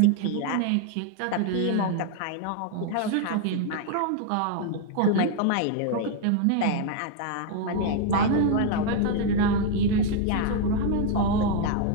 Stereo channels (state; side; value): different; both; correlation 0.00